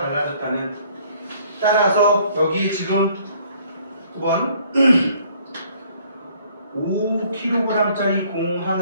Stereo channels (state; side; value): inverted; both; correlation -0.60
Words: 따라서 여기 지금 9번 5kg짜리 공